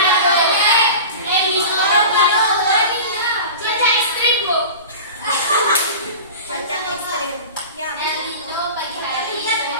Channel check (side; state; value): both; inverted; correlation -0.34